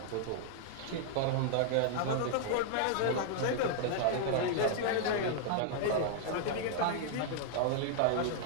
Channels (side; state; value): both; different; correlation -0.01